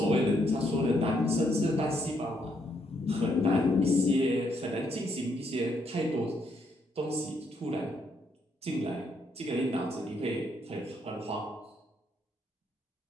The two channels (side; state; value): both; normal; correlation 0.74